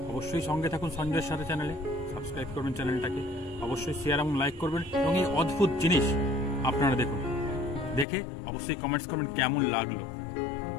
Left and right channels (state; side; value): drops out; right; at 8.1 s